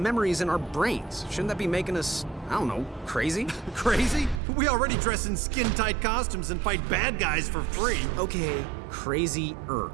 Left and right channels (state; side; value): drops out; left; at 4.4 s